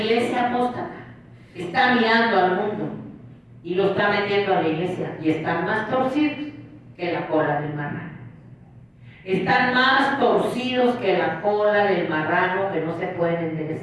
apóstata está mirando al mundo y lo está metiendo a la iglesia, y están más torcidos que la cola del marrano. Están más torcidos que la cola del marrano que no se pueden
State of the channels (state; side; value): identical; both; correlation 1.00